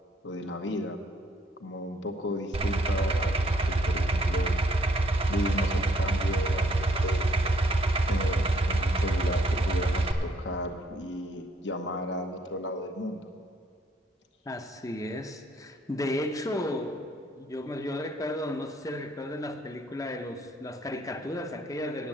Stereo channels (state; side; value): normal; both; correlation 0.67